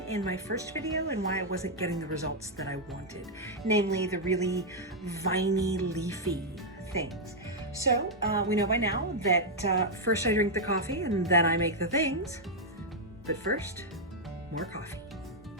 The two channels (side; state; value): both; normal; correlation -0.03